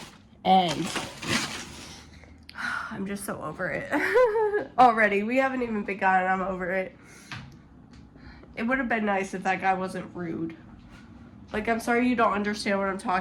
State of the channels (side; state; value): both; identical; correlation 1.00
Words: and I'm just so over it. Already. We haven't even begun and I'm over it. It would have been nice if that guy wasn't rude. Like, I'm sorry you don't understand what I'm